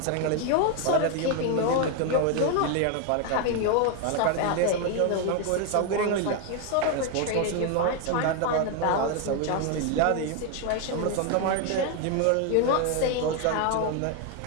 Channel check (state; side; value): different; both; correlation 0.01